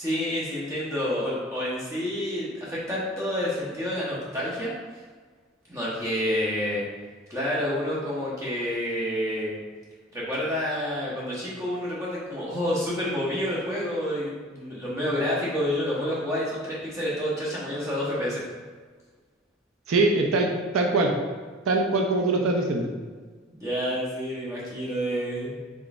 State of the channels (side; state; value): both; normal; correlation 0.40